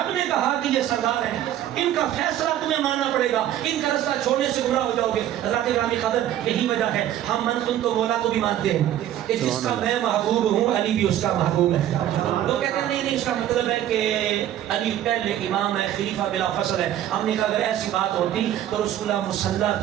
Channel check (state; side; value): quieter; left; 11.9 dB